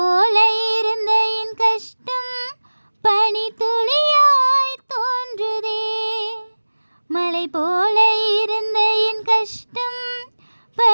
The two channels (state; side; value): inverted; both; correlation -1.00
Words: இருந்த என் கஷ்டம் பனி துளியாய் தோன்றுதே. மலை போல இருந்த என் கஷ்டம்